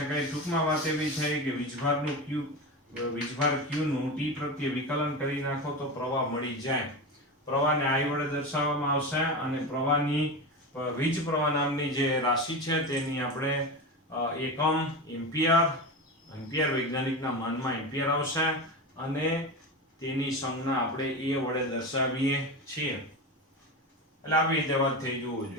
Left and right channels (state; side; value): normal; both; correlation 0.22